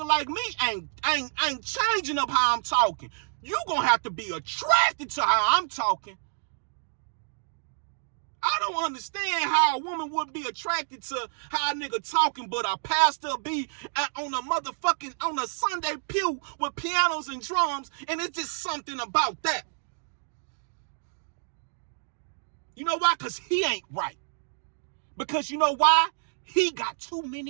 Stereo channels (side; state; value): left; silent; digital silence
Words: like me ain't changing up how I'm talking. You gonna have to be attracted to how I'm talking. I don't understand how a woman would be attracted to how a nigga talking, but a pastor be on a Sunday pew with pianos and drums, and it's just something about that. You know why? Because he ain't right. Because you know why? He got too